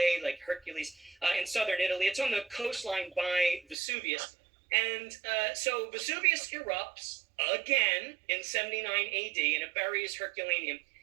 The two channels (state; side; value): drops out; left; at 3.8 s